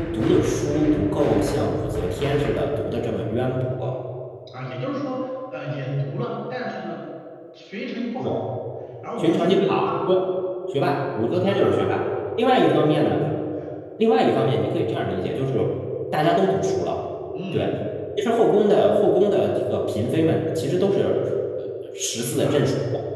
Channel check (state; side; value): identical; both; correlation 1.00